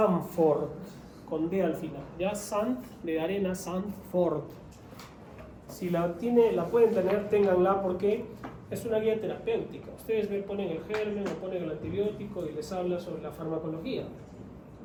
con D al final. Ya Sant de arena, Sanford. Si la pueden tener, ténganla porque es una guía terapéutica. Ustedes ponen el germen o ponen el antibiótico y les habla sobre la farmacología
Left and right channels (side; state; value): both; identical; correlation 1.00